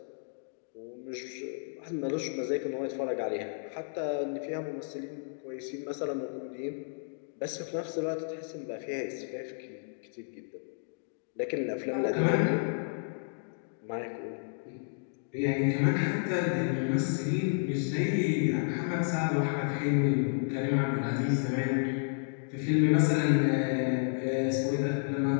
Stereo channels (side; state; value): right; silent; digital silence